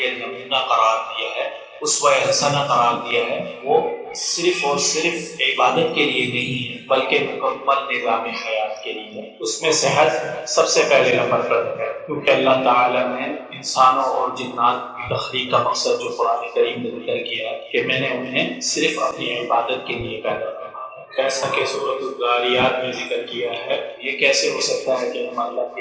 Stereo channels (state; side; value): identical; both; correlation 1.00